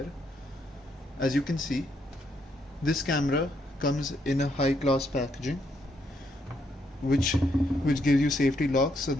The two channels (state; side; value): normal; both; correlation 0.75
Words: As you can see, this camera comes in a high class packaging which gives you safety locks so